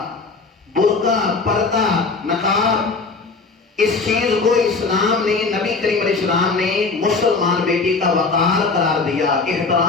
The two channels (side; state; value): right; quieter; 4.2 dB